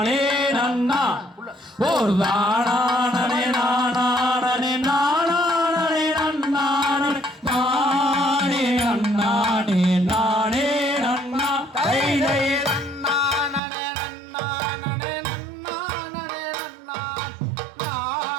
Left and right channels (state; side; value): drops out; left; at 13.6 s